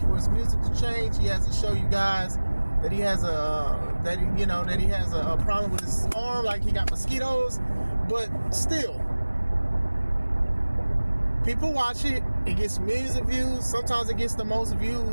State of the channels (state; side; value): inverted; both; correlation -1.00